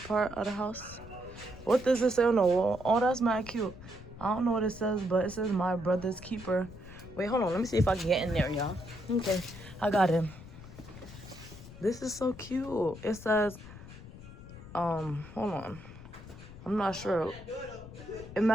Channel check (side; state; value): left; noise; rumble, 15 dB below the sound